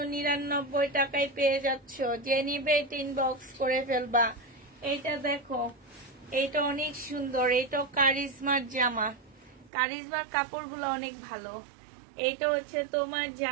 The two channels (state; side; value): drops out; left; at 9.7 s